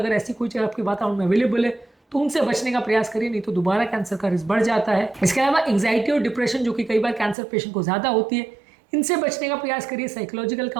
ऐसी कोई चीज़ आपके वातावरण में अवेलेबल है तो उनसे बचने का प्रयास करिए, नहीं तो दोबारा कैंसर का रिस्क बढ़ जाता है। इसके अलावा एंग्जाइटी और डिप्रेशन जो कि कई बार कैंसर पेशेंट को ज़्यादा होती है, इनसे बचने का प्रयास करिए। साइकोलॉजिकल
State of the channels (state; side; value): drops out; left; at 7.4 s